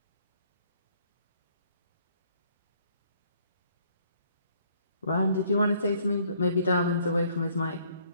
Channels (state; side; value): inverted; both; correlation -0.64